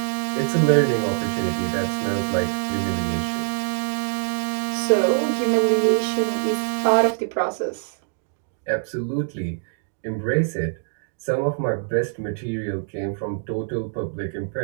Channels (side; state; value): left; silent; digital silence